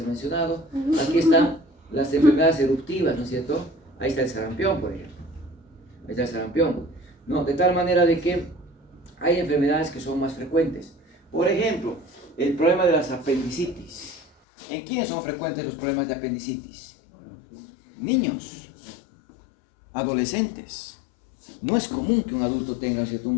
mencionado. Aquí están las enfermedades eruptivas, ¿no es cierto? Ahí está el sarampión, por ejemplo. Ahí está el sarampión, ¿no? De tal manera de que hay enfermedades que son más frecuentes. Por ejemplo, el problema de las apendicitis. ¿En quiénes son frecuentes los problemas de apendicitis? Niños, adolescentes. No es común que un adulto tenga, ¿cierto?,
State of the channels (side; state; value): right; drops out; at 14.2 s